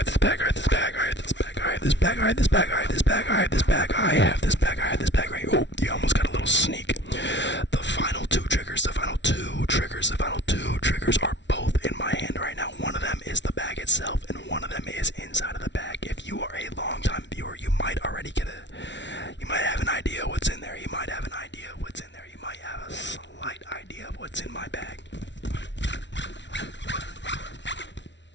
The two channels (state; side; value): late; right; 0.52 ms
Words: I have this bag right. Oh, you almost got a little sneak. The final two triggers are both in my hand right now. One of them is the bag itself, and one of them is inside of the bag. If you are a long-time viewer, you might already you might have an idea what's in there. You might have an idea of what's in there. You might have a slight idea of what's in my bag.